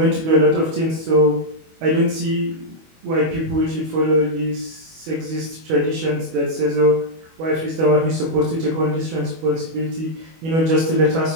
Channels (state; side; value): late; left; 25 ms